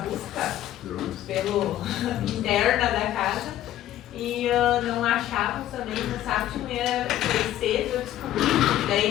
pelo interna da casa e não achávamos também, no sábado de manhã foi cedo, eu descobri, daí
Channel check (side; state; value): right; quieter; 13.1 dB